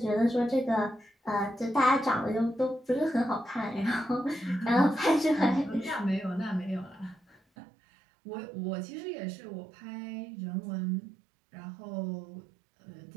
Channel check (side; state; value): left; drops out; at 7.4 s